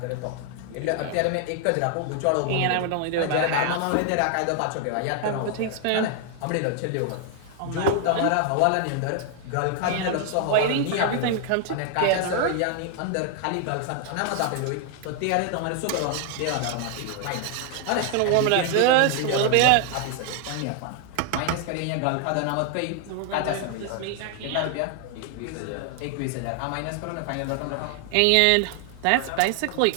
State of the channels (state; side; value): different; both; correlation 0.00